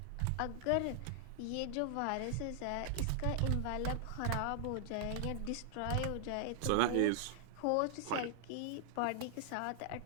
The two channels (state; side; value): different; both; correlation -0.01